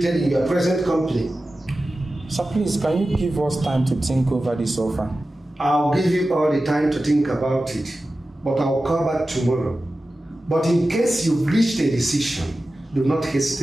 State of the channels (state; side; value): normal; both; correlation 0.94